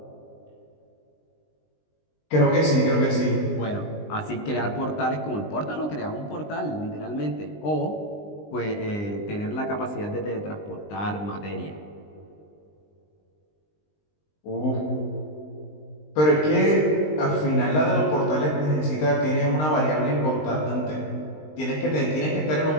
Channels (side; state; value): right; late; 20 ms